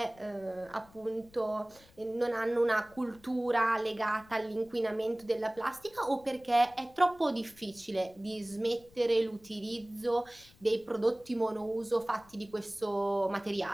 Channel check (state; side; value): noise; left; rumble, 26 dB below the sound